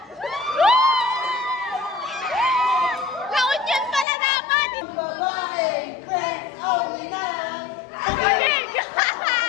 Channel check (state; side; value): drops out; right; at 4.0 s